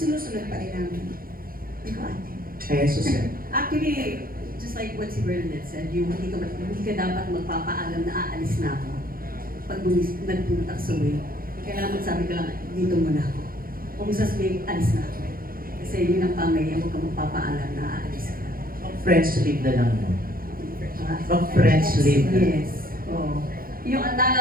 pa rin namin. Ikaw, ate. Eh, Susan. Actually, just like what si Bernadette said, hindi ka dapat magpapaalam na aalis na ako. Pag nagpunta sa way, kailangan magsabi ka lang, dito muna ako. Kung sasabihin, alis na ako. Kasi yun ang pamahiyan, huwag ka magpapaalam na aalis ka. Friends leave na lang mo. Friends leave na. Yes. Oo. Yung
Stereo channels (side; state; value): left; late; 0.42 ms